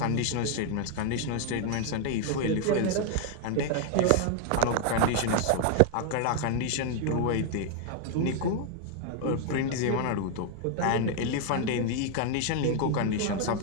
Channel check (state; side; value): different; both; correlation 0.00